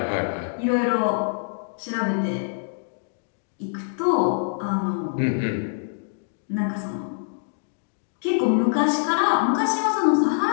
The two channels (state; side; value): silent; right; digital silence